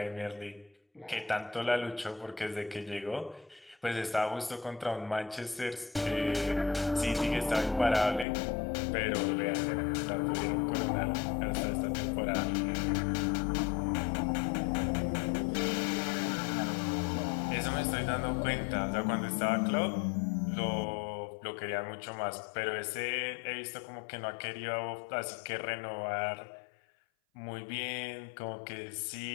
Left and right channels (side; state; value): right; drops out; at 8.2 s